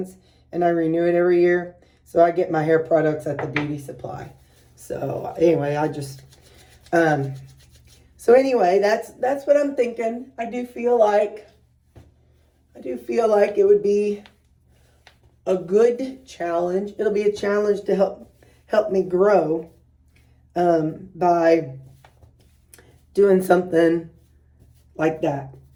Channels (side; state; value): both; identical; correlation 1.00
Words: and I renew it every year. So I get my hair products at the beauty supply. So anyway, so anyway, that's what I'm thinking. I do feel like it would be a good challenge. It'll be a challenge to help me grow by doing something like that.